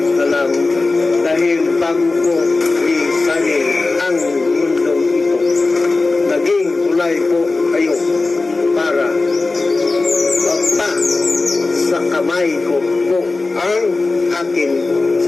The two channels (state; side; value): quieter; right; 3.5 dB